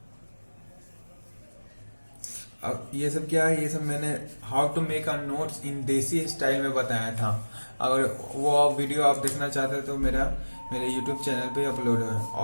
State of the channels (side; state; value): both; inverted; correlation -1.00